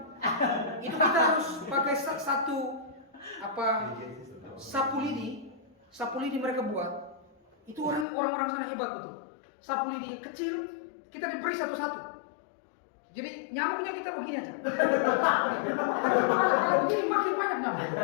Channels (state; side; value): drops out; right; at 8.1 s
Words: Itu kita harus pakai satu sapu lidi mereka buat. Itu orang-orang sana hebat betul. Sapu lidi kecil kita diberi satu-satu. Jadi nyamuknya kita begini aja. Kalau begini makin banyak nyamuk.